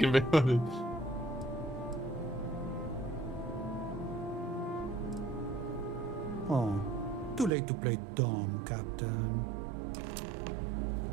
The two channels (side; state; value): left; drops out; at 7.5 s